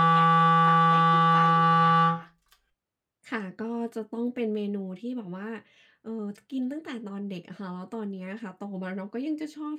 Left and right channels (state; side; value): identical; both; correlation 1.00